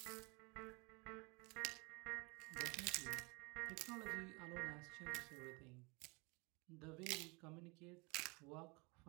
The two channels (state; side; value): quieter; left; 28.5 dB